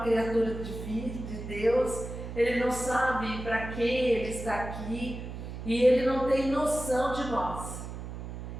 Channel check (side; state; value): right; noise; hum, 8 dB below the sound